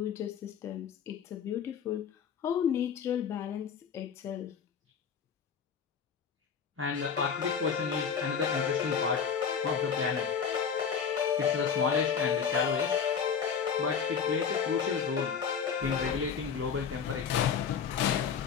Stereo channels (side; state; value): right; quieter; 6.8 dB